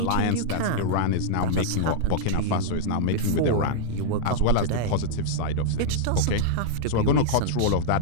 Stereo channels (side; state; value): both; different; correlation -0.02